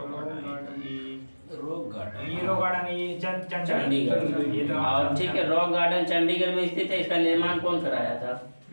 Chandigarh. और ठीक है, रॉक गार्डन चंडीगढ़ में स्थित है। इसका निर्माण कौन कराया था?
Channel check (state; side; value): inverted; both; correlation -1.00